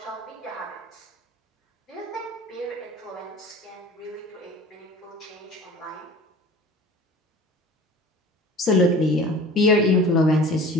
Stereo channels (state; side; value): normal; both; correlation 0.42